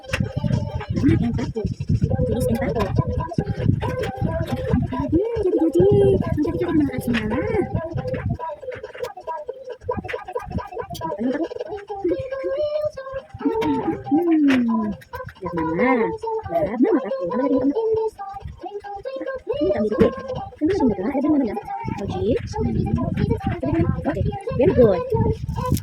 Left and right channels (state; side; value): identical; both; correlation 1.00